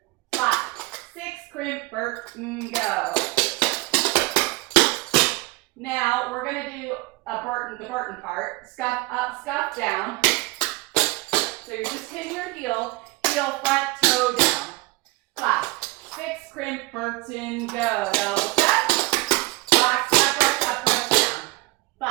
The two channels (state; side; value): quieter; left; 22.5 dB